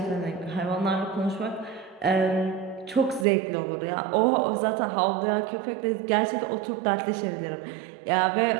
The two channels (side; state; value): left; drops out; at 3.2 s